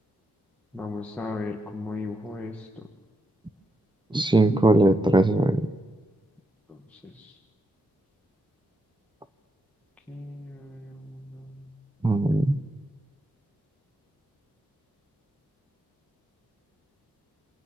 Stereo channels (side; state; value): both; normal; correlation 0.83